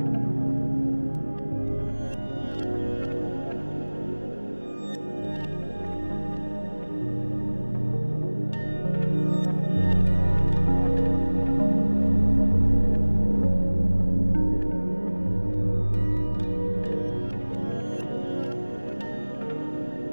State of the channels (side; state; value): both; inverted; correlation -1.00